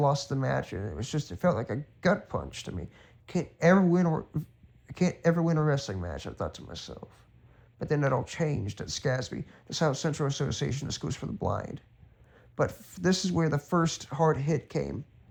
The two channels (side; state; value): both; identical; correlation 1.00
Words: the match, and it felt like a gut punch to me. I can't ever win a wrestling match, I thought to myself. But then it all changed at SCASB, the South Central Association of Schools for the Blind. But this is where the first hard hit came.